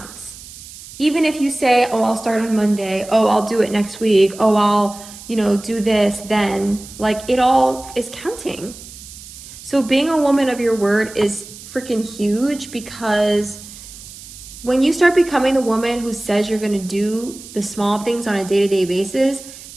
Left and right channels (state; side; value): noise; right; hiss, 16 dB below the sound